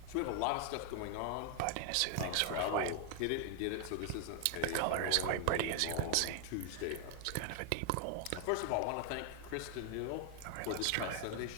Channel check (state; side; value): different; both; correlation 0.00